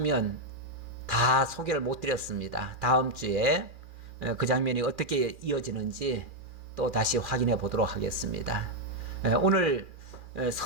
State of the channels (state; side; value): late; left; 2.4 ms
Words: 다 소개를 못 드렸습니다. 다음 주에 그 장면이 어떻게 이어지는지 또 다시 확인해 보도록 하겠습니다. 오늘